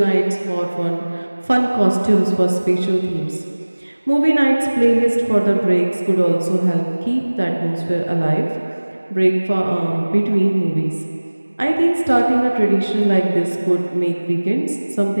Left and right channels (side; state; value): both; inverted; correlation -1.00